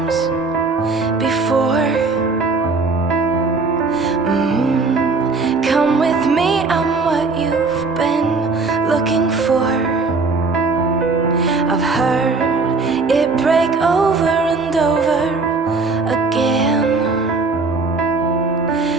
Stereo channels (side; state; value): left; quieter; 4.1 dB